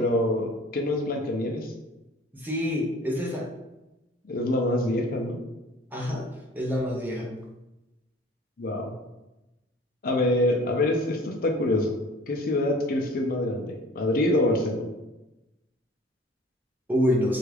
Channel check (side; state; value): both; normal; correlation 0.47